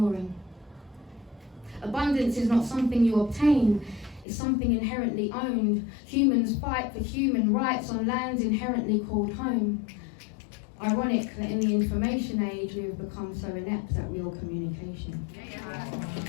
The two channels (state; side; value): drops out; right; at 4.2 s